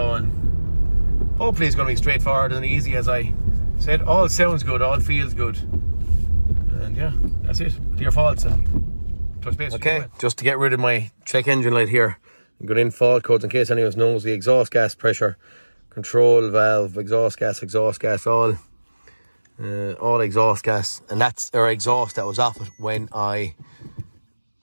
and hopefully it's going to be straightforward and easy. As I said, all sounds good, all feels good, and yeah, that's it. Clear faults and touch base. Okay, just to get rid of my check engine light here, I'm going in fault codes in case anyone knows. The exhaust gas pressure control valve, exhaust gas, all exhaust gas, and that's our exhaust that was off it when I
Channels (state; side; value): inverted; both; correlation -1.00